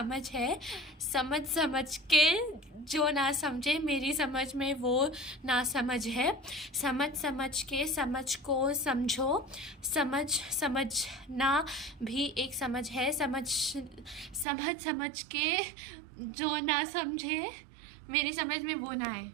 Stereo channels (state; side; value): drops out; left; at 14.5 s